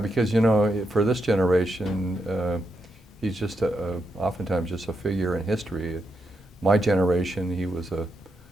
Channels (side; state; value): both; normal; correlation 0.83